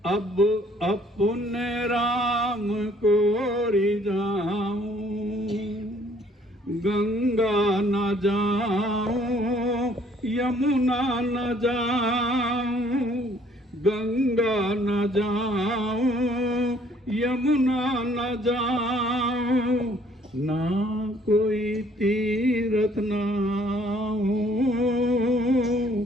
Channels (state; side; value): normal; both; correlation 0.61